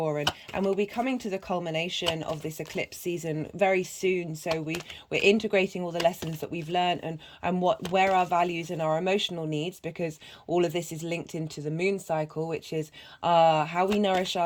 and we'll be coming to the culmination of this eclipse season very soon. So we're integrating all the lessons that we've learned, and where our values and our emotional needs, because all of this is linked into the moon cycle, which is how we nourish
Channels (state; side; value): identical; both; correlation 1.00